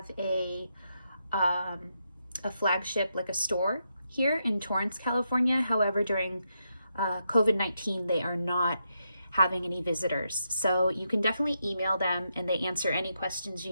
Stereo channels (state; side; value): inverted; both; correlation -0.82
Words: a flagship, like a store here in Torrance, California. However, during COVID-19, they are not having any visitors. So you can definitely email them and they answer any questions